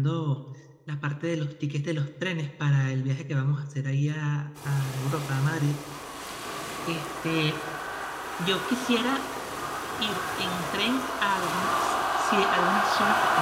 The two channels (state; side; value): identical; both; correlation 1.00